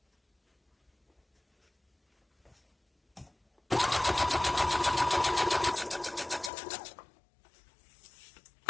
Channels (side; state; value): right; drops out; at 6.5 s